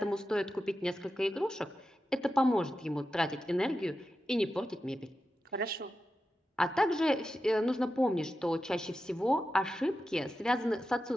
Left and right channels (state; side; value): normal; both; correlation 0.91